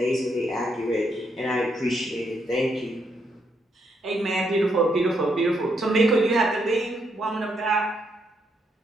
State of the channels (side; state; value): both; normal; correlation 0.77